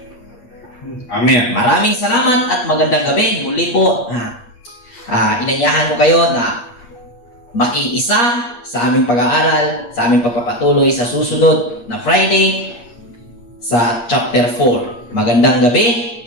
Amen. Maraming salamat at magandang gabi. Muli po, inanyahan ko kayo na makiisa sa aming pag-aaral, sa aming pagpapatuloy sa susunod na Friday sa chapter 4. Magandang gabi.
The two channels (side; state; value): right; late; 8.5 ms